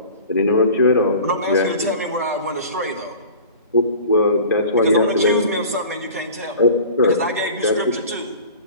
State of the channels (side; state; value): both; inverted; correlation -0.41